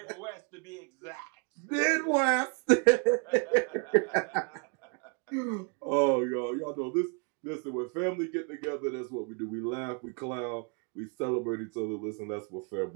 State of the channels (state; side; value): quieter; left; 36.5 dB